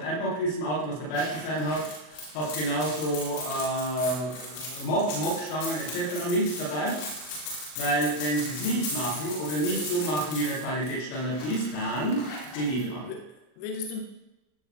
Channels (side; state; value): right; late; 40 ms